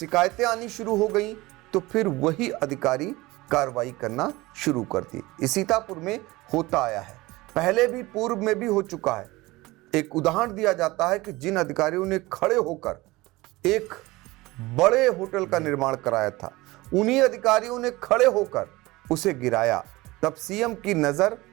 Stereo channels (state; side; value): quieter; left; 20.6 dB